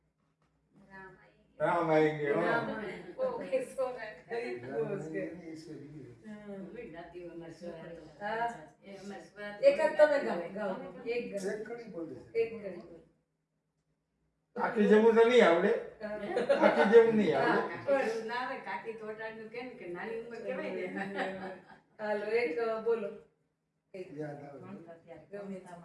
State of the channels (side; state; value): both; identical; correlation 1.00